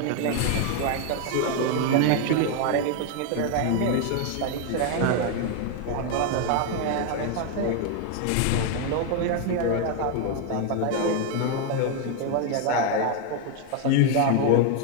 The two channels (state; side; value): different; both; correlation 0.01